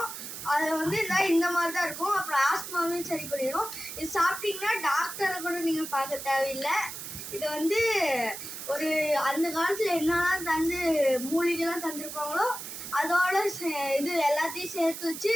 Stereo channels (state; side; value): noise; right; hiss, 9 dB below the sound